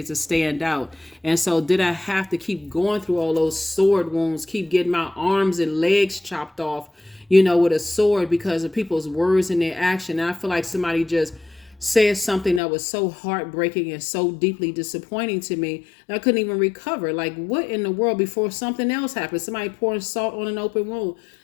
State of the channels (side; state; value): right; drops out; at 12.6 s